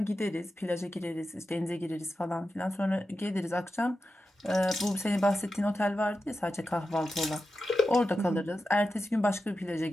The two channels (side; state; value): both; normal; correlation 0.91